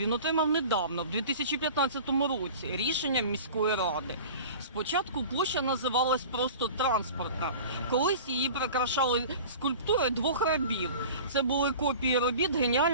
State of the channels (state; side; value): inverted; both; correlation -0.39